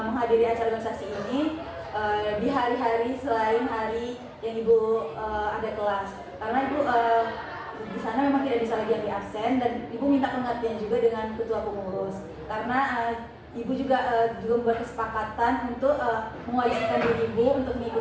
menghadiri acara organisasi ini di hari-hari selain hari yang Ibu ada kelas, karena Ibu di sana memang tidak bisa lagi ambil absen dan Ibu minta pengertian juga dengan ketua pengurus karena Ibu juga membuat kesepakatan untuk mewajibkan diri Ibu untuk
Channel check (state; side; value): identical; both; correlation 1.00